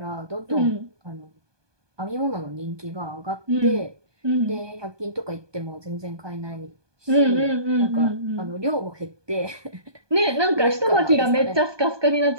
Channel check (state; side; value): late; left; 1.2 ms